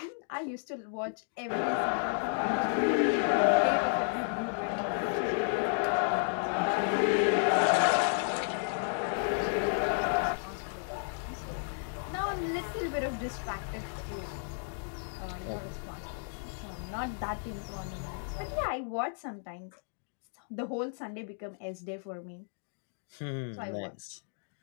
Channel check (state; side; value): silent; right; digital silence